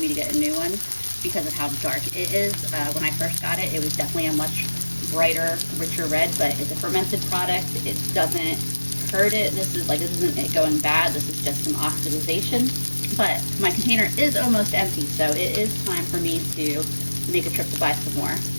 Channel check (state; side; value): inverted; both; correlation -1.00